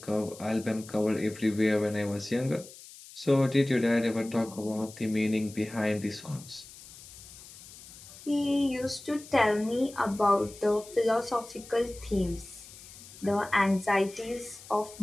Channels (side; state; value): left; noise; hiss, 18 dB below the sound